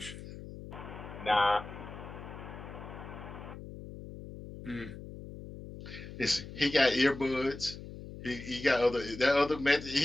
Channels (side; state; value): left; noise; hum, 12 dB below the sound